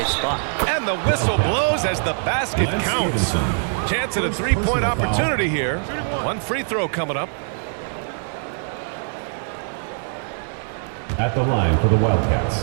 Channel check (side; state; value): left; silent; 59 dB below the other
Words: spot. And the whistle blows as the basket counts. Chance at a 3-point opportunity here. One free throw coming up. At the line for the